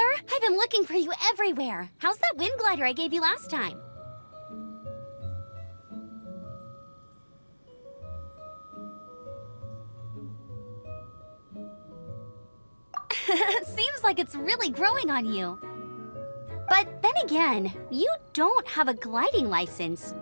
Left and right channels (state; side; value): inverted; both; correlation -1.00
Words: I've been looking for you everywhere. How's that wind glider I gave you last time? Seems like it's really growing on you. But then again, you don't have a gliding license,